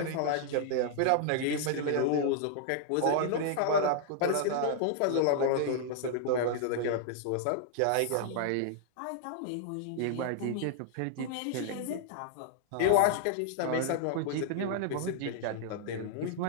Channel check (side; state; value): both; different; correlation -0.01